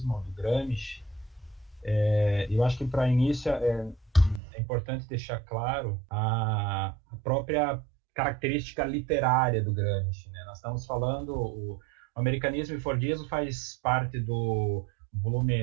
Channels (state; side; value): drops out; left; at 4.4 s